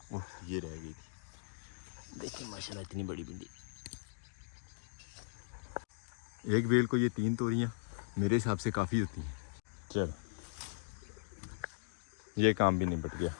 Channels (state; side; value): silent; right; digital silence